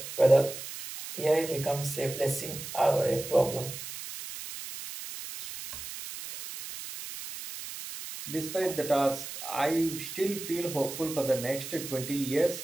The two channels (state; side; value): noise; right; hiss, 9 dB below the sound